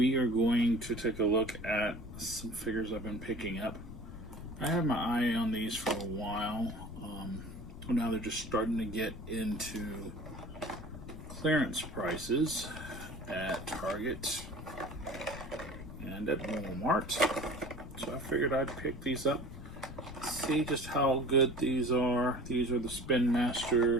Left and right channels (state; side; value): noise; left; rumble, 12 dB below the sound